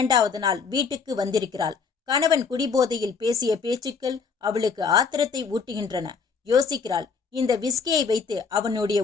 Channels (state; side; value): quieter; right; 5.5 dB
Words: நாள் வீட்டுக்கு வந்திருக்கிறாள். கணவன் குடிபோதையில் பேசிய பேச்சுக்கள் அவளுக்கு ஆத்திரத்தை ஊட்டுகின்றன. யோசிக்கிறாள், இந்த விஸ்கியை வைத்து அவனுடைய